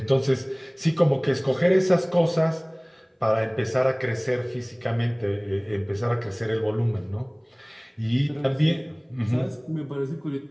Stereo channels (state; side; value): identical; both; correlation 1.00